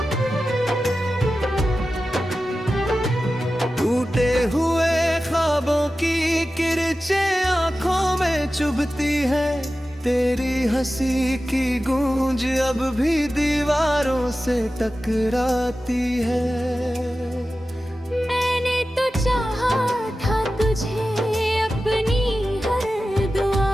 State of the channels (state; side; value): normal; both; correlation 0.94